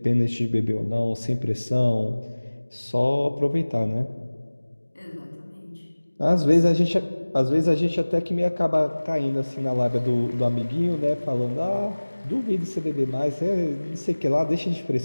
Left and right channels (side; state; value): both; inverted; correlation -1.00